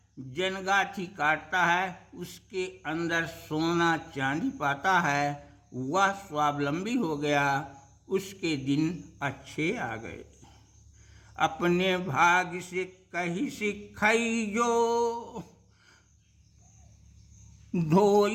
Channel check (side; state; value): both; identical; correlation 1.00